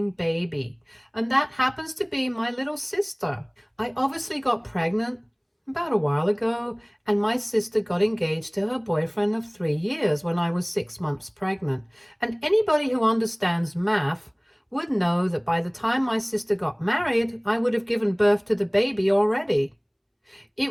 baby. And that happens to be my little sister. I obviously got pregnant about a while ago, and my sister got engaged to her boyfriend of 3 years when I was 6 months pregnant. And anybody who understands math would know that by the time my sister got married, I would have given birth to the baby already.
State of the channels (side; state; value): both; identical; correlation 1.00